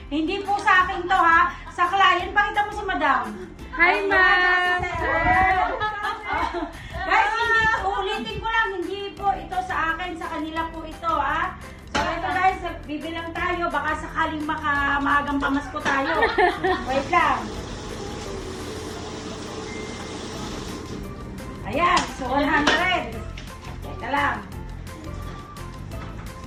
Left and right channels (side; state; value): both; identical; correlation 1.00